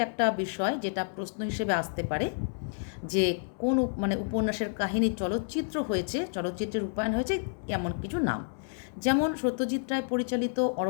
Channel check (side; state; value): right; silent; 58 dB below the other